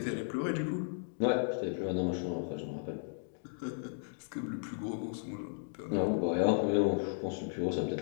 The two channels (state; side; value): silent; right; digital silence